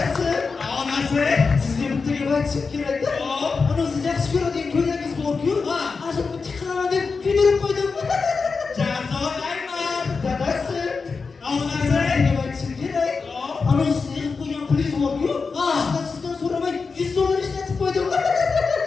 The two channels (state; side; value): quieter; right; 4.7 dB